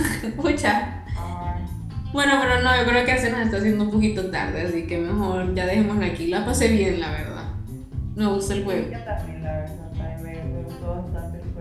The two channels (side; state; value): both; identical; correlation 1.00